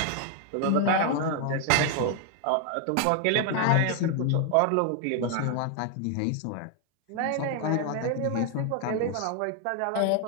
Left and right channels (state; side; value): different; both; correlation 0.00